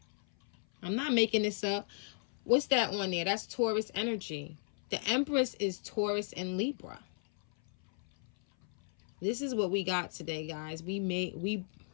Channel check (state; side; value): silent; right; 55 dB below the other